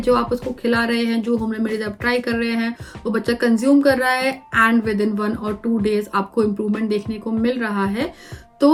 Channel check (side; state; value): both; identical; correlation 1.00